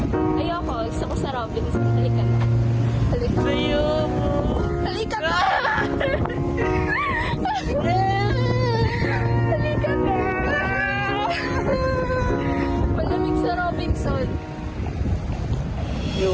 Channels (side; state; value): both; identical; correlation 1.00